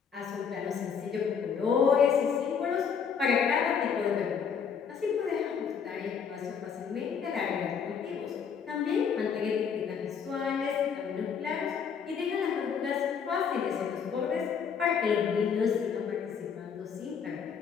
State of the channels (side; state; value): right; quieter; 6.8 dB